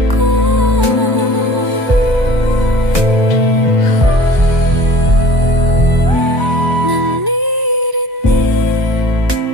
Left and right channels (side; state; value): left; late; 1.0 ms